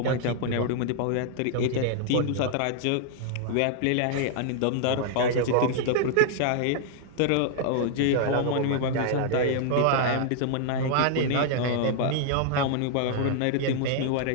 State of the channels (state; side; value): different; both; correlation -0.01